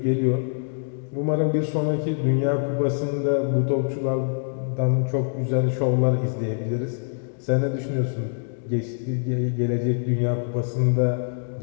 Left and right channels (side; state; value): right; silent; digital silence